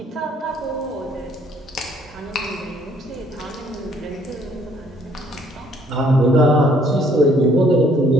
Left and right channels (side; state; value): both; normal; correlation 0.63